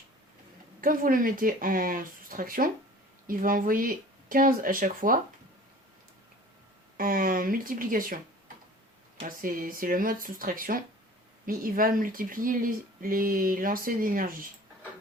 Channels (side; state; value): both; normal; correlation 0.45